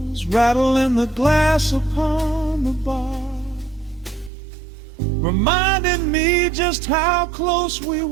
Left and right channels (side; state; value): left; drops out; at 4.3 s